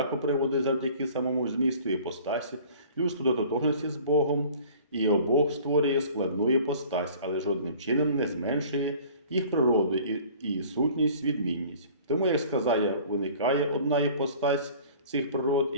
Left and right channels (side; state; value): both; inverted; correlation -0.48